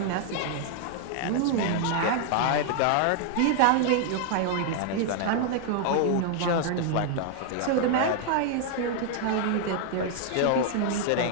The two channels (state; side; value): different; both; correlation 0.00